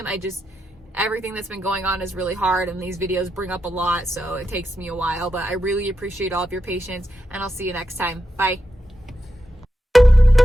Everything that's been going on is really hard, and these videos bring up a lot, so it takes me a while, but I really appreciate all of your patience, and I'll see you next time. Bye.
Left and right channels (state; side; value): normal; both; correlation 0.87